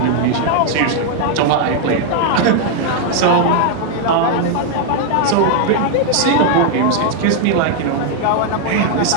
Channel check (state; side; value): different; both; correlation 0.00